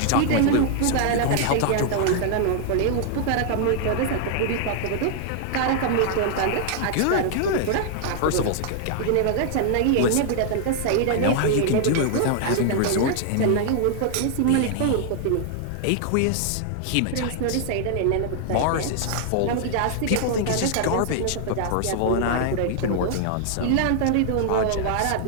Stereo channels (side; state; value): both; different; correlation 0.00